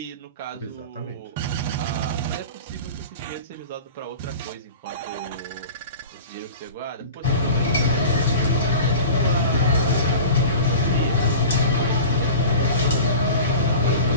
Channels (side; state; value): both; inverted; correlation -0.36